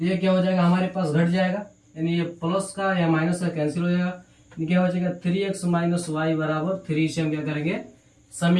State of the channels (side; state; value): both; identical; correlation 1.00